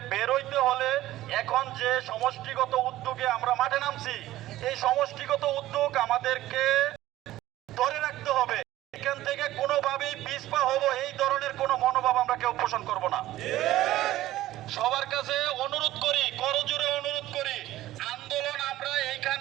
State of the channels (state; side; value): quieter; left; 15.2 dB